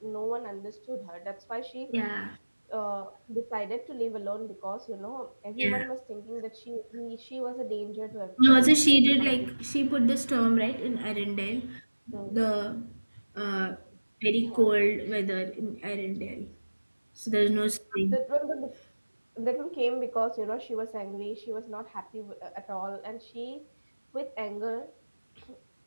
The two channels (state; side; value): inverted; both; correlation -1.00